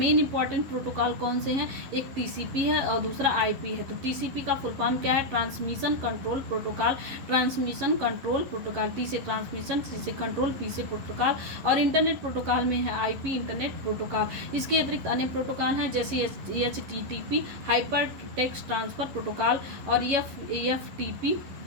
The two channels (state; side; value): late; left; 11 ms